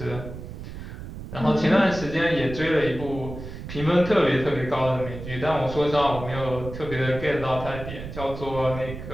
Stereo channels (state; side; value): noise; right; rumble, 10 dB below the sound